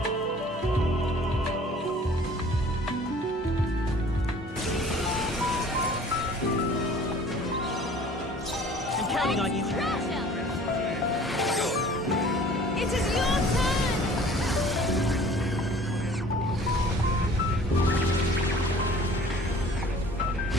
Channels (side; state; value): both; normal; correlation 0.49